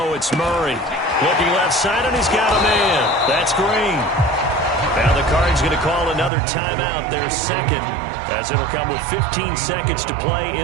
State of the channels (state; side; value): drops out; left; at 6.3 s